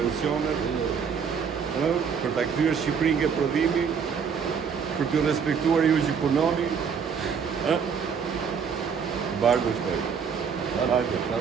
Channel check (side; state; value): left; quieter; 6.6 dB